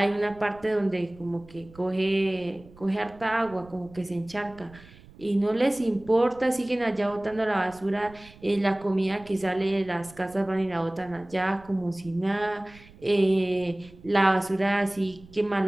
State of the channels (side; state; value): right; noise; rumble, 22 dB below the sound